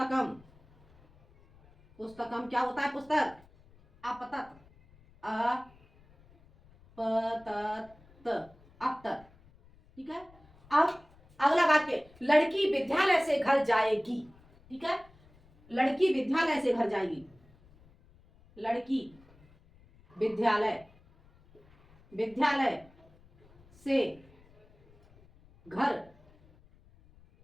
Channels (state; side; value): noise; left; rumble, 28 dB below the sound